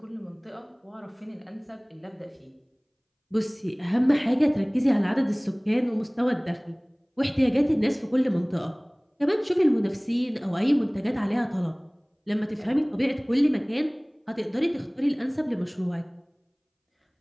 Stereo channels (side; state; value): both; identical; correlation 1.00